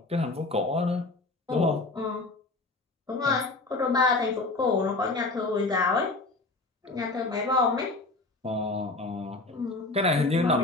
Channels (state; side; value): quieter; right; 3.2 dB